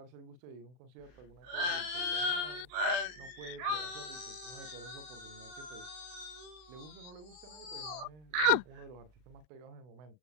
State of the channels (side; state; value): left; late; 39 ms